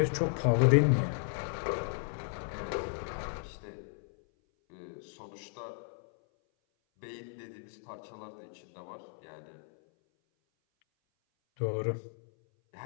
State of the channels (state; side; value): silent; right; 55 dB below the other